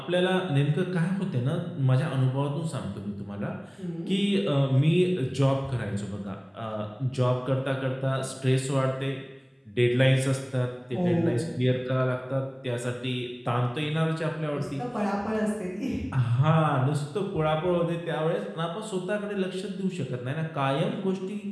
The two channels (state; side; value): identical; both; correlation 1.00